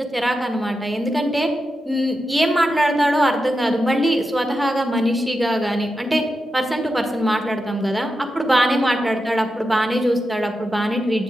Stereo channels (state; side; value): normal; both; correlation 0.89